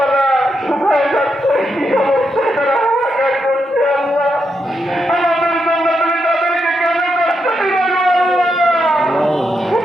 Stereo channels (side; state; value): both; normal; correlation 0.83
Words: শুকায় যাচ্ছে, কি অবস্থায় তারা হাহাকার করছে। আল্লাহ, আমাদের জন্য তুমি তাদেরকে কেন কষ্ট দিলে?